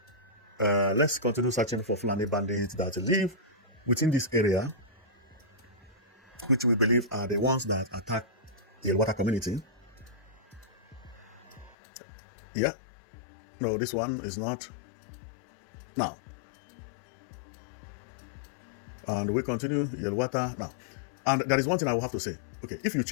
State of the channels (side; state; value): right; drops out; at 11.8 s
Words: let's continue searching for Fulani bandits that live within this area, which we believe are the ones that attack the Yelwata community. Yeah. No, this one is not. Now. And we continue Yelwata now. And there is one thing I will have to say. Okay, if you